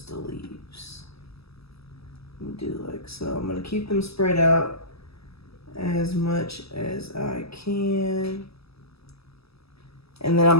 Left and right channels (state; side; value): late; right; 0.77 ms